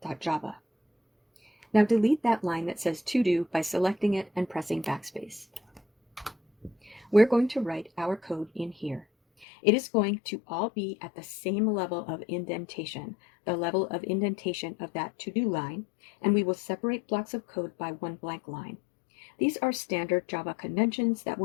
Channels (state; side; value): drops out; right; at 9.5 s